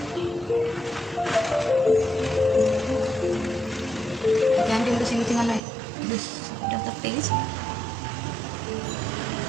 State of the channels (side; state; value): left; drops out; at 5.6 s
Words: Again, doing the same thing on this side of the face.